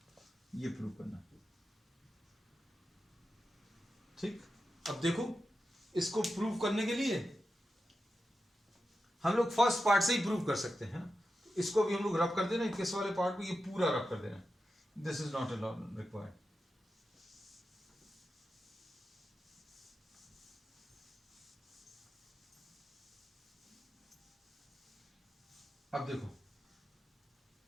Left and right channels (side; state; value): both; normal; correlation 0.90